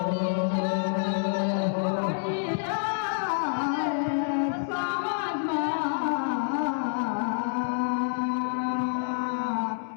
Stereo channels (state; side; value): silent; right; 60 dB below the other